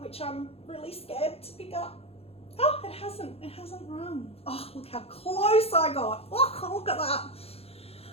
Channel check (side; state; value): right; late; 0.29 ms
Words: I'm really scared to pick up. Oh, it hasn't run. Oh, look how close I got. Oh, look at that.